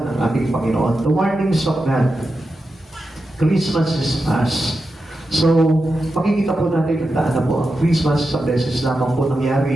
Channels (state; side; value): normal; both; correlation 0.89